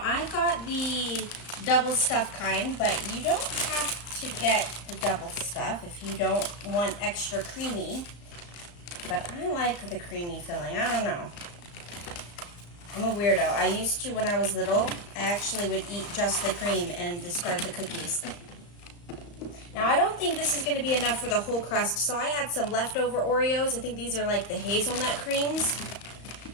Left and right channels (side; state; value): right; late; 34 ms